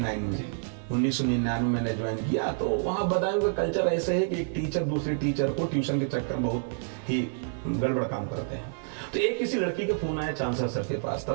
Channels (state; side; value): silent; left; 59 dB below the other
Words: में, 1999 में मैंने ज्वाइन किया। तो वहाँ बदायूं का कल्चर ऐसे है कि एक टीचर दूसरे टीचर को ट्यूशन के चक्कर बहुत ही गड़बड़ काम करते हैं। तो एक किसी लड़की का फोन आया चांसलर सर के पास,